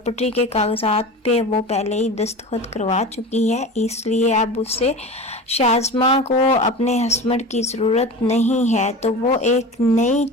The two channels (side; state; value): both; normal; correlation 0.32